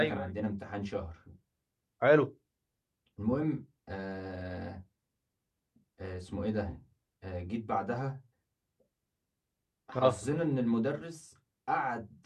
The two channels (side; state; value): both; identical; correlation 1.00